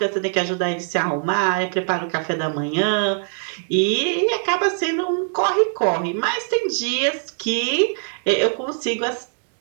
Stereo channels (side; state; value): left; silent; 64 dB below the other